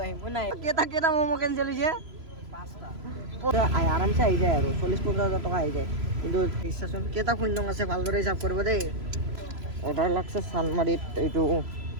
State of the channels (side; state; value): left; late; 3.0 ms